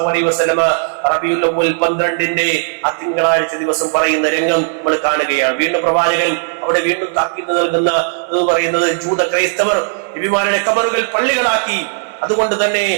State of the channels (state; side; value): silent; left; digital silence